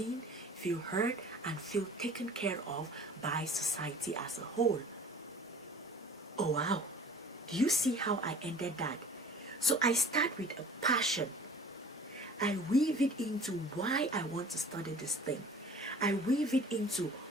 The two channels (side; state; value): both; normal; correlation 0.47